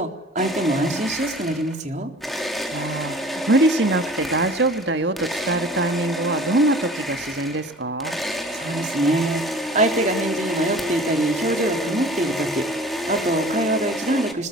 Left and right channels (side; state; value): both; normal; correlation 0.45